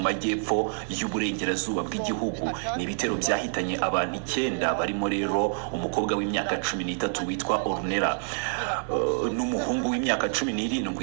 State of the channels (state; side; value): silent; left; 60 dB below the other